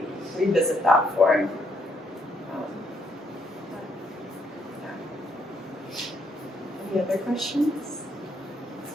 revisit that form. Any other questions?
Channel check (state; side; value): normal; both; correlation 0.73